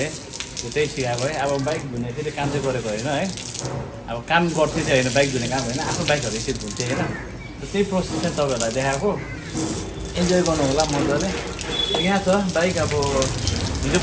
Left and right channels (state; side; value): identical; both; correlation 1.00